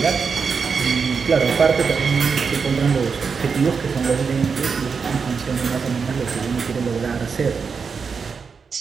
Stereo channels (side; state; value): left; quieter; 5.6 dB